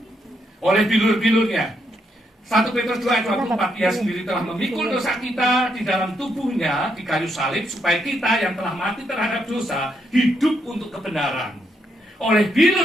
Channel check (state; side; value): normal; both; correlation 0.78